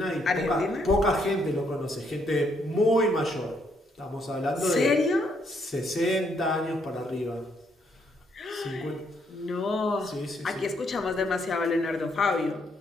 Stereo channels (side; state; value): both; normal; correlation 0.72